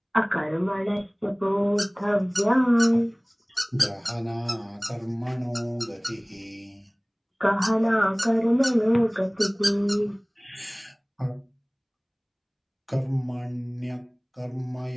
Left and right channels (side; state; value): both; identical; correlation 1.00